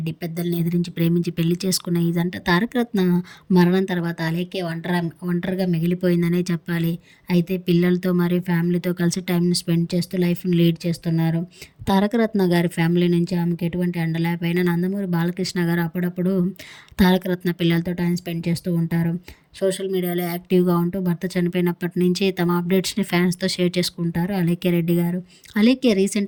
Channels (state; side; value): identical; both; correlation 1.00